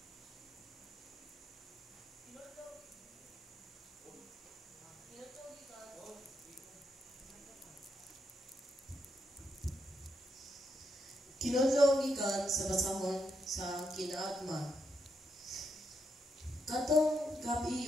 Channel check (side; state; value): both; normal; correlation 0.80